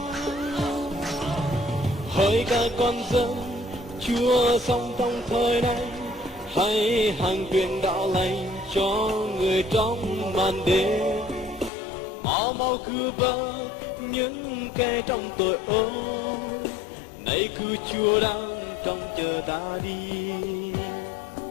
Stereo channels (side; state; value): right; drops out; at 11.7 s